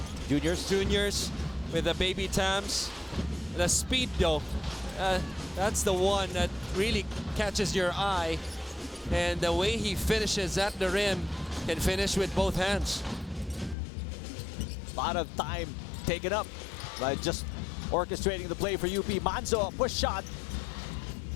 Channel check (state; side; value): drops out; right; at 13.8 s